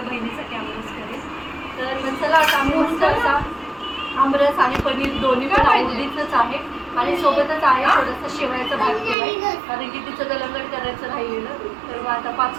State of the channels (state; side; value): drops out; left; at 9.2 s